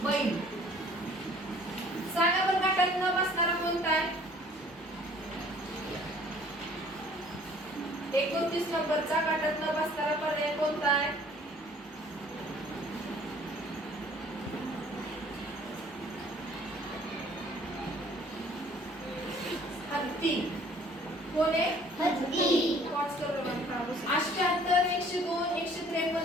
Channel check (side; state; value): both; normal; correlation 0.54